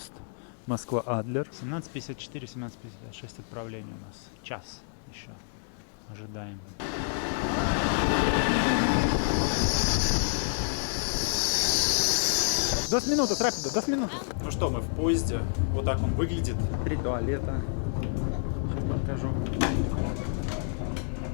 Москва-Адлер. 17:54, 17:56 отправление у нас. Час еще. Ожидаем. До минуты, рапидо, до минуты. Ну что, мы в поезде. Вот так он выглядит. 3 туалета. Сейчас покажу.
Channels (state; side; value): silent; right; digital silence